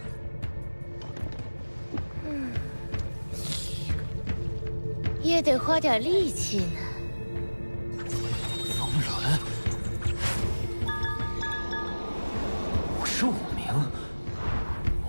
也得花点力气呢。风轮，55名。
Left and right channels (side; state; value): both; inverted; correlation -1.00